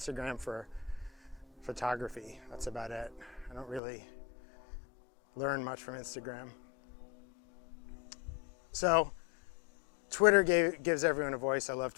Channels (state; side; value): drops out; right; at 3.8 s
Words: for photography. That's about it. I don't really learn much from Instagram. So, Twitter gives everyone a voice. I love